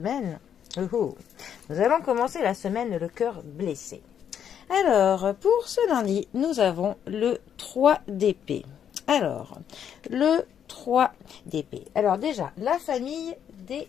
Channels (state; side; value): quieter; right; 8.8 dB